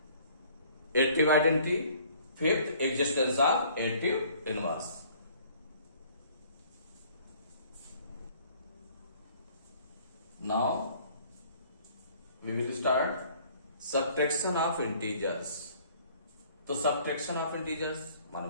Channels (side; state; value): both; inverted; correlation -0.56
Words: additive identity, fifth existence of additive inverse. Now we will start subtraction of integers। तो subtraction of integers माने